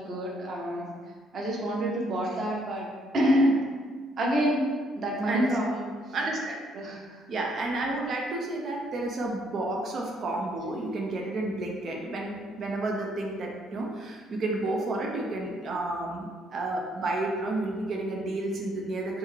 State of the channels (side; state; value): both; normal; correlation 0.69